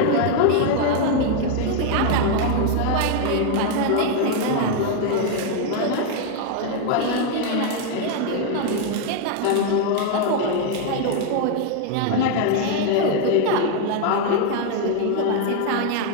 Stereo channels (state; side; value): different; both; correlation 0.01